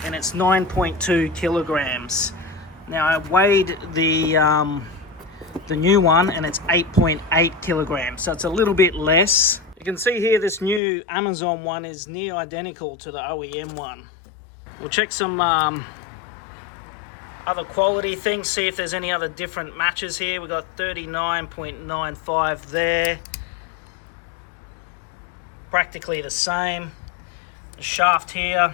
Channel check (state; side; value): drops out; right; at 10.8 s